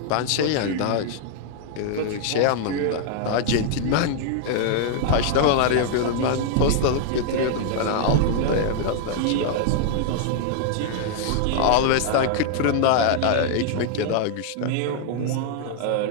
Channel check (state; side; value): different; both; correlation 0.00